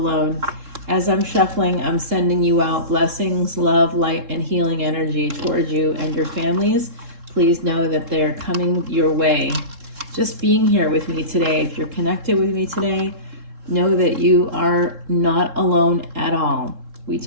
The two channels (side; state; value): left; late; 3.7 ms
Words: As I'm shuffling, I'm sending you out blessings, love, light, and healing energy towards you and your families. Please know that they're coming your way. Just being here with me today, if you're connected with me today, know that you are not alone at all. We